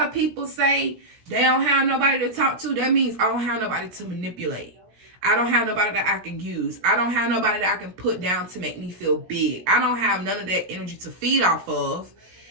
of people say they don't have nobody to talk to, that means I don't have nobody to manipulate. I don't have nobody that I can use. I don't have nobody that I can put down to make me feel big. I don't have none of that energy to feed off of.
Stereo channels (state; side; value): late; left; 17 ms